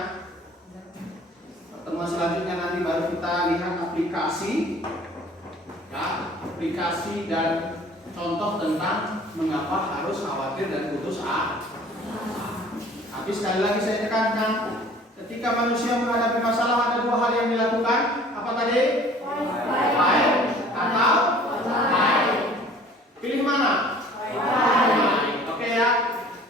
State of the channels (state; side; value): normal; both; correlation 0.50